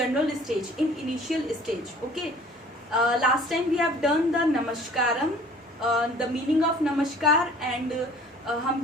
stage, in initial stage. Okay, last time we have done the Namaskaram, the meaning of Namaskar and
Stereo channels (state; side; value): normal; both; correlation 0.51